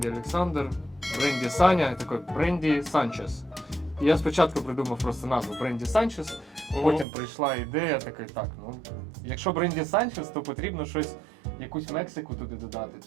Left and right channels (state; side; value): drops out; left; at 7.1 s